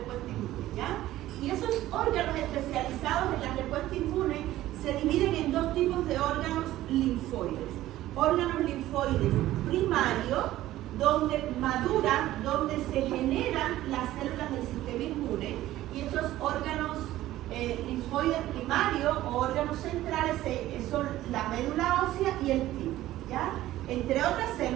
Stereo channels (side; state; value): left; quieter; 14.9 dB